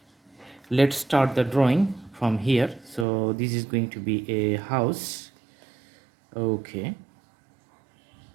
Let's start the drawing from here. So, this is going to be a house. Okay,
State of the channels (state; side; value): drops out; left; at 3.1 s